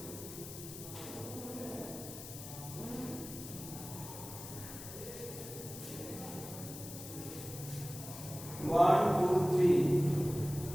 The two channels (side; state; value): left; noise; hiss, 11 dB below the sound